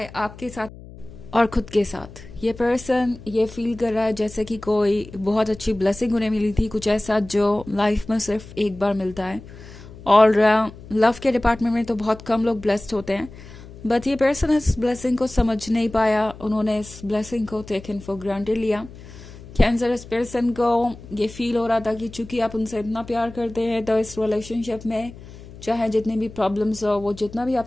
आपके साथ और खुद के साथ। ये पर्सन ये फील कर रहा है जैसे कि कोई बहुत अच्छी ब्लेसिंग उन्हें मिली थी, कुछ ऐसा जो लाइफ में सिर्फ एक बार मिलता है। और लव के डिपार्टमेंट में तो बहुत कम लोग ब्लेस्ड होते हैं, बट ये पर्सन इस ब्लेसिंग को समझ नहीं पाया। उन्होंने इस ब्लेसिंग को टेकन फॉर ग्रांटेड लिया। कैंसर इस पर्सन को ये फील हो रहा था कि चूंकि आप उनसे इतना प्यार करते हैं तो इस रिलेशनशिप में चाहे जितनी भी प्रॉब्लम्स हो, वो जितना भी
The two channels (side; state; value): left; noise; hum, 17 dB below the sound